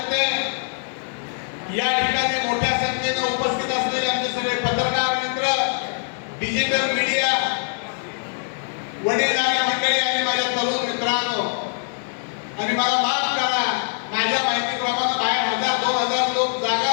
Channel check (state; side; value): silent; right; digital silence